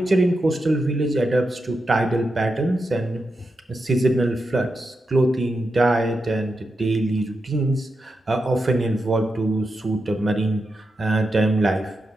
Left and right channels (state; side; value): normal; both; correlation 0.87